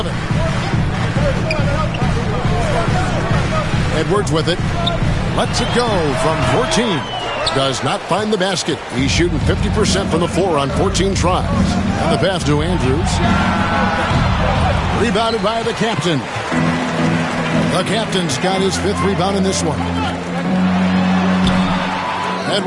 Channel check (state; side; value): identical; both; correlation 1.00